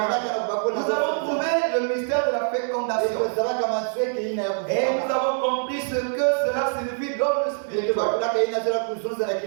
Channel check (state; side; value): silent; left; digital silence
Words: avons trouvé le mystère de la fécondation. Et nous avons compris ce que cela signifie dans le spirituel.